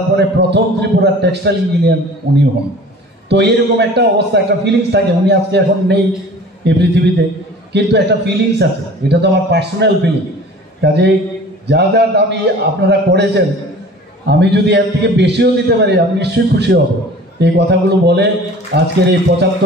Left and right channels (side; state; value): both; normal; correlation 0.44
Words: পরে প্রথম ত্রিপুরার টেক্সটাইল ইঞ্জিনিয়ার উনি হন। তো এরকম একটা অবস্থা, একটা ফিলিংস থাকে। উনি আজকে এখন নেই এই পৃথিবীতে, কিন্তু একটা ফিলিংস আছে, এটা তো আমার পার্সোনাল ফিলিং। কাজেই যা যা দামি আপনারা করেছেন, আমি যদি এর থেকে বেশিও দিতে পারি আমি নিশ্চয়ই খুশি হব। এই কথাগুলো বলে আজকের এই